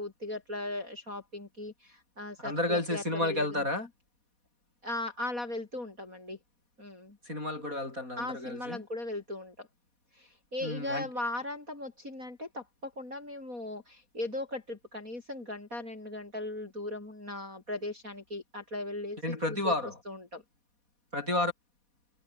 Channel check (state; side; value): late; left; 4.1 ms